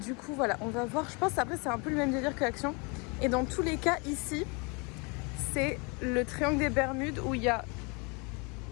coup, voilà, on va voir. Je pense après, c'est un peu le même délire que Action. Et dans tous les cas, ici, c'est le triangle des Bermudes où il y a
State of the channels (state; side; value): quieter; right; 30.7 dB